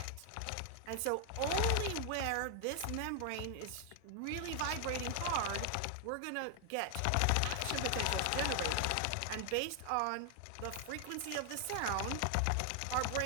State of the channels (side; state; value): both; different; correlation 0.00